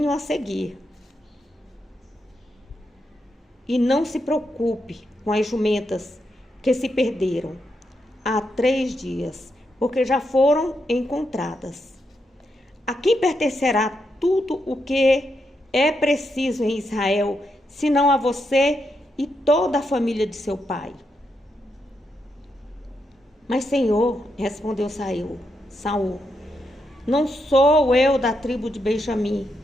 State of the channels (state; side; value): normal; both; correlation 0.82